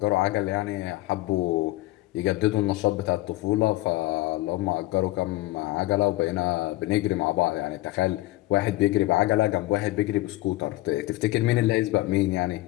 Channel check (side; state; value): right; quieter; 18.4 dB